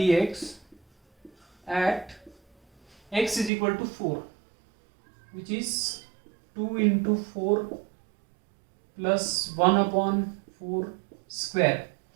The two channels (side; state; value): left; drops out; at 3.5 s